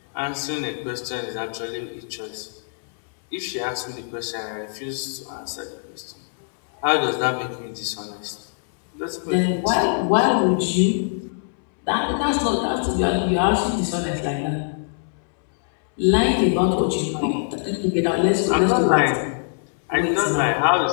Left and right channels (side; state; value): right; silent; digital silence